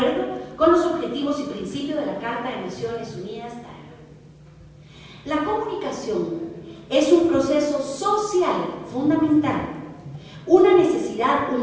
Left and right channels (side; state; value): both; identical; correlation 1.00